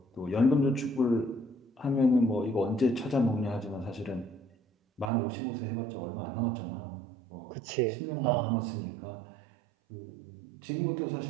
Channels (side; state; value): left; drops out; at 5.1 s